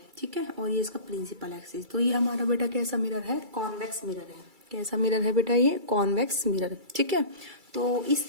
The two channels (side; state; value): left; late; 2.3 ms